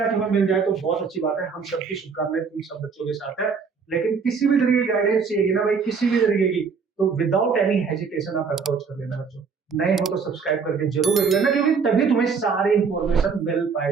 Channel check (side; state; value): left; quieter; 5.6 dB